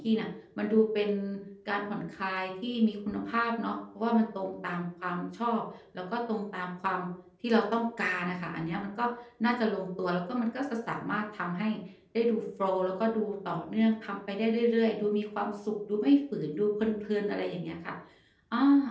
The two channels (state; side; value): identical; both; correlation 1.00